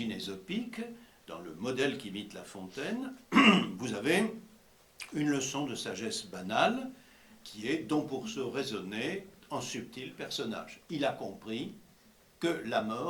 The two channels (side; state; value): both; identical; correlation 1.00